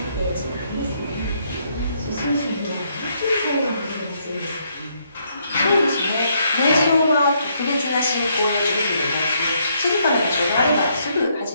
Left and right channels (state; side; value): inverted; both; correlation -0.72